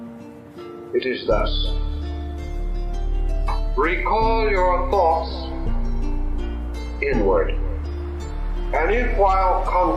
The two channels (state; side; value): identical; both; correlation 1.00